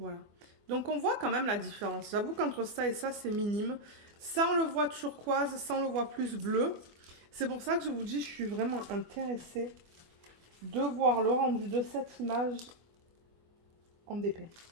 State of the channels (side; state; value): left; late; 24 ms